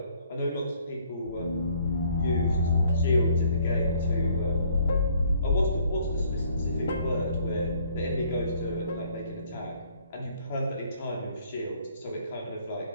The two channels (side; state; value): both; inverted; correlation -0.62